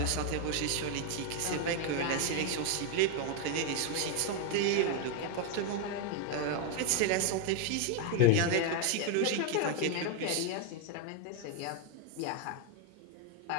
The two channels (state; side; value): different; both; correlation 0.01